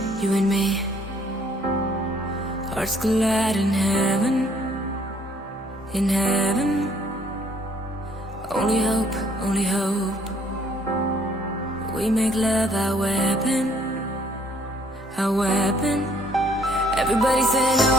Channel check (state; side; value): normal; both; correlation 0.63